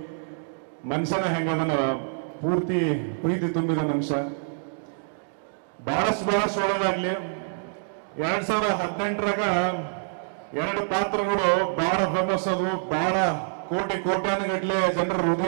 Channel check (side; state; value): left; silent; digital silence